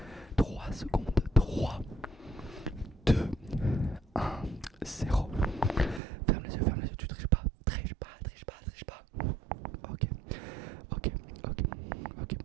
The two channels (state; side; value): drops out; left; at 6.0 s